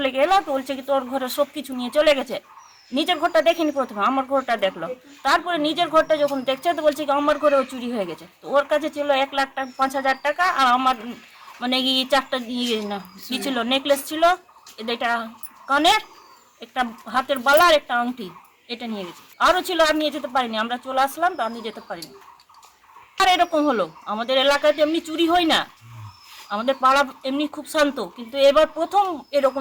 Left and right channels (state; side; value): identical; both; correlation 1.00